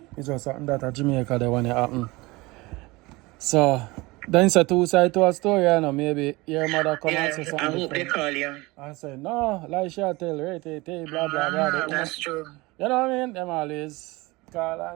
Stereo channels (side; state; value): left; quieter; 22.6 dB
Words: It's just something that a Jamaica they want to happen. So then it's a two side to a story, you know. Maybe your mother come and say something. I hope they call you. And say, no, like she tell, right, blah, blah, blah. That's true. You know what I mean? Them always call